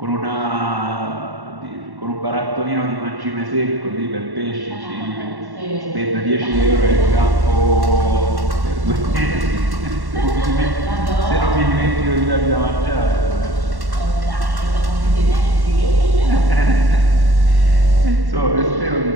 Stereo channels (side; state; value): left; late; 1.1 ms